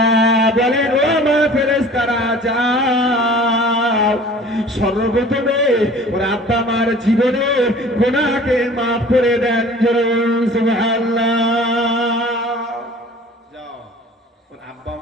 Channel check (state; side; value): normal; both; correlation 0.46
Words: বলেন ও মা ফেরেশতারা যাও, সর্বপ্রথমে ওর আব্বা মার জীবনে গুনাহকে মাফ করে দেন। সুবহানাল্লাহ। যাও ওর আব্বা